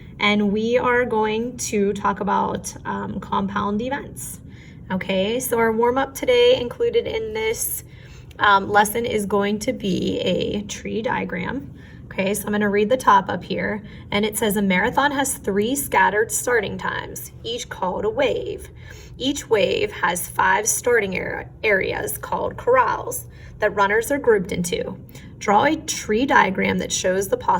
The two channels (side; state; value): both; identical; correlation 1.00